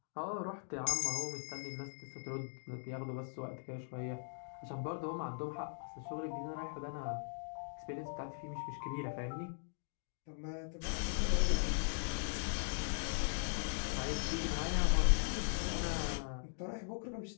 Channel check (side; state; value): right; silent; digital silence